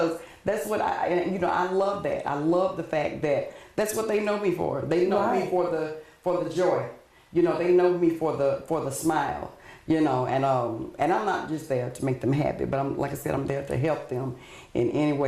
that's what I love that. I love the fact that that's what they know me for. They know me for the joy. You know, they know me for the smile, you know, and I'm not just there to make them happy, but like I said, I'm there to help them in any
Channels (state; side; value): identical; both; correlation 1.00